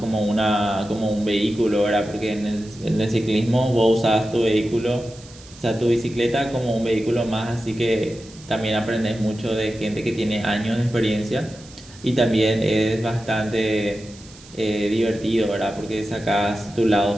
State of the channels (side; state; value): right; noise; hiss, 21 dB below the sound